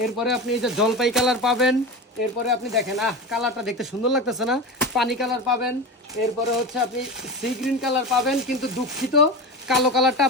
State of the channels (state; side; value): normal; both; correlation 0.25